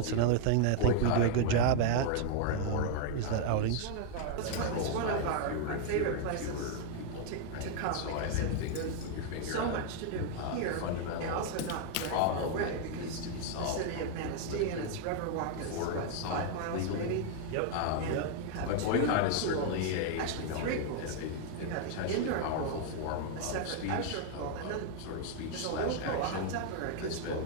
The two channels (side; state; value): both; different; correlation 0.00